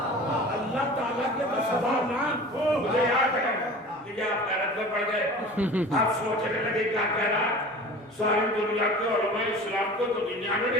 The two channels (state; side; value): normal; both; correlation 0.39